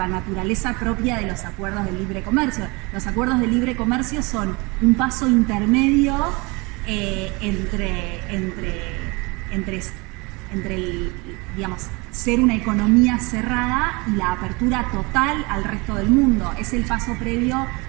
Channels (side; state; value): left; quieter; 26.8 dB